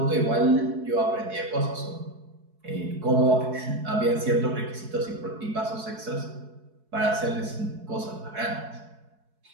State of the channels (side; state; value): left; late; 4.7 ms